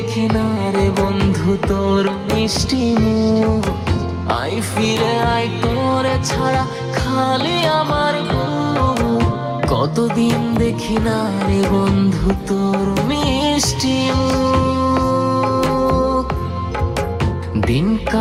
না রে বন্ধু তোর মিষ্টি মুখ। আই ফিরে আই তোরে ছাড়া খালি আমার বুক, কতদিন দেখি না রে বন্ধু তোর মিষ্টি মুখ। দিন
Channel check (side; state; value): both; identical; correlation 1.00